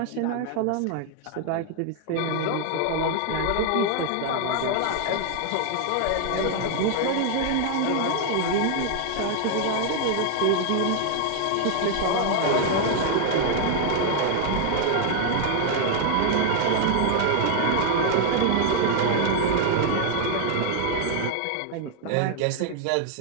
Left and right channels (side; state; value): both; different; correlation 0.00